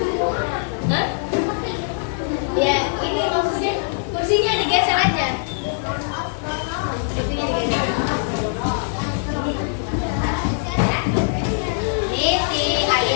Hah? Ya, ini maksudnya kursinya digeser aja. Kursinya digeser. Ini si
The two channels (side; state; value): right; silent; digital silence